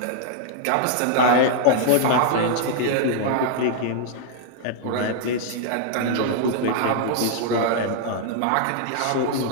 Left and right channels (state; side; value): different; both; correlation -0.01